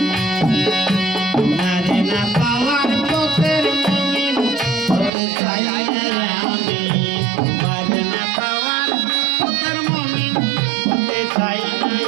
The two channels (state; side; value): drops out; left; at 5.1 s